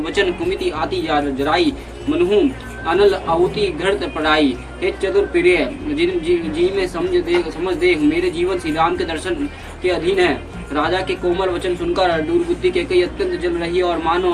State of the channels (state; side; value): identical; both; correlation 1.00